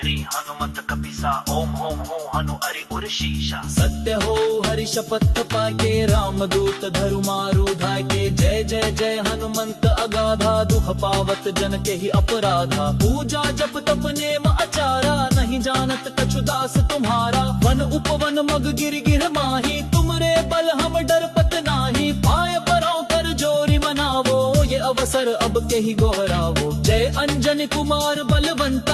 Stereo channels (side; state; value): both; identical; correlation 1.00